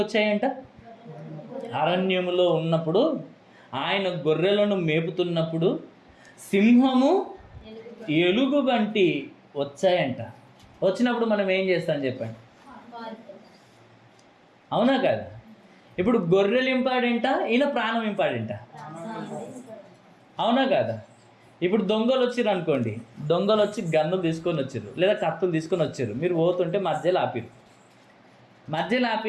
వచ్చాయంట? అరణ్యములో ఉన్నప్పుడు ఆయన గొర్రెలను మేపుతున్నప్పుడు సింహము ఎలుగుబంటి వచ్చాయంట. వచ్చినప్పుడు మనం ఏం చేస్తాం చెప్పండి? అవునా కదా? ఇప్పుడు గొర్రెలు ఇంపార్టెంటా, ఈయన ప్రాణం ఇంపార్టెంటా? అవునా కదా? ఇప్పుడు దొంగలు వచ్చిర్రు అనుకోండి, దొంగలు వచ్చి గన్నులు తీసుకొని వచ్చారు లేదా కత్తులు తీసుకొని వచ్చారు, మీరు పోతుంటే మధ్యలో ఆపిరు. మధ్యలో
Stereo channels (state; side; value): identical; both; correlation 1.00